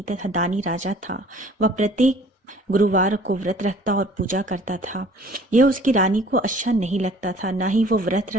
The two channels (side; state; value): both; normal; correlation 0.52